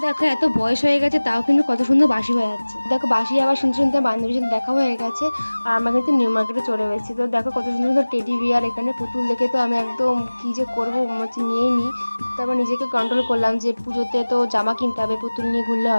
দেখো, এত বয়স হয়ে গেছে তাও কিন্তু কত সুন্দর বাঁশি হয়ে যাচ্ছে। দেখো, বাঁশি আবার শুনতে শুনতে বান্ধবীর সাথে দেখা হয়ে গেছে, আর আমরা কিন্তু নিউ মার্কেটে চলে গেছি। তো দেখো, কত সুন্দর সুন্দর টেডি বিয়ার, এখানে পুতুল দেখে তো আমি একদম কী যে করবো হচ্ছে নিয়েই নিই। তারপর নিজেকে কন্ট্রোল করলাম যে পুজোতে তো জামা কিনতে হবে, পুতুল নিয়ে ঘুরলে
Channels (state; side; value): inverted; both; correlation -1.00